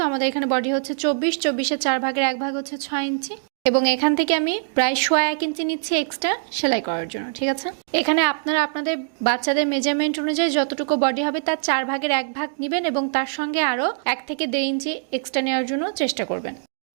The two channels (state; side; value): silent; left; digital silence